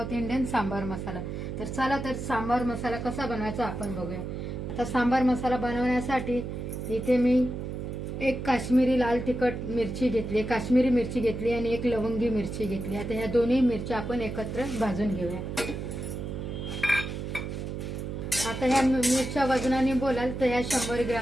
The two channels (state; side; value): noise; right; hum, 5 dB below the sound